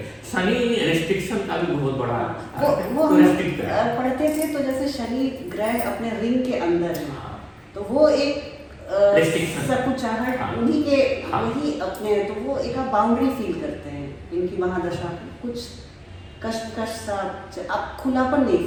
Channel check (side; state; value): both; identical; correlation 1.00